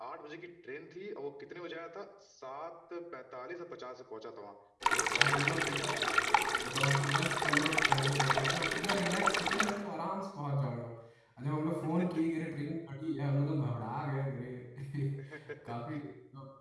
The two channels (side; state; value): both; identical; correlation 1.00